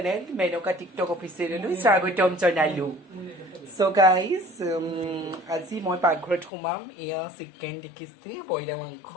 Menoka TikTok official. Swagotom janailo. So guys, আজি মই পাকঘৰত সোমাম ইয়া চিকেন দেখিছি বইলা মাংস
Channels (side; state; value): right; drops out; at 6.5 s